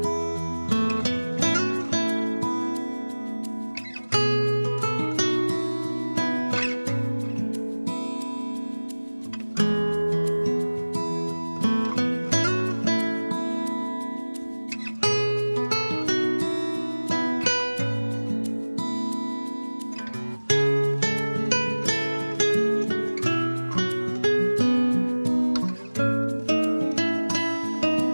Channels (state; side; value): inverted; both; correlation -1.00